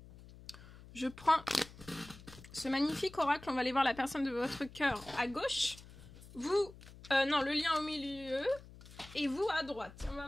Je prends ce magnifique oracle, on va aller voir la personne de votre cœur à gauche. Vous, non, le lien au milieu. Et vous à droite. On va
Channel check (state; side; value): noise; left; hum, 19 dB below the sound